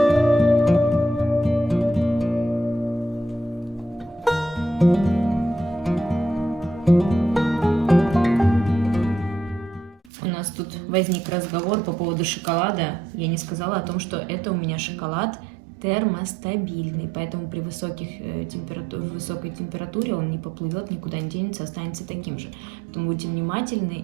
У нас тут возник разговор по поводу шоколада. Я не сказала о том, что это у меня шоколад термостабильный, поэтому при высокой температуре он не поплывет, никуда не денется, останется таким же. Поэтому будьте внимательны,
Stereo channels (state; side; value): drops out; left; at 10.0 s